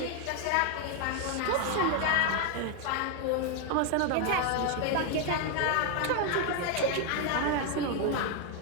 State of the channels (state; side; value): different; both; correlation 0.01